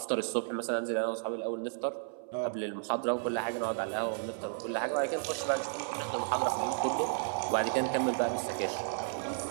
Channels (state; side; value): silent; left; 56 dB below the other